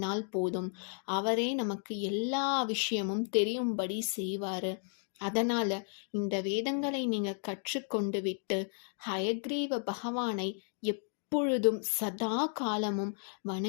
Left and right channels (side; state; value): right; silent; 55 dB below the other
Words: போதும், அவரே நமக்கு எல்லா விஷயமும் தெரியும்படி செய்வாரு. அதனால இந்த வேதங்களை நீங்க கற்றுக்கொண்டு விட்டு ஹயக்ரீவ பகவானை எப்பொழுதும் சதா காலமும்